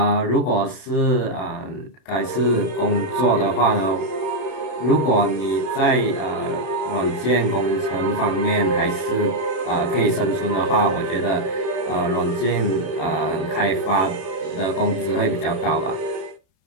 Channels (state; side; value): late; right; 32 ms